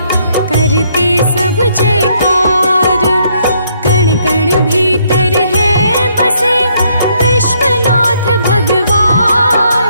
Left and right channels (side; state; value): both; inverted; correlation -0.70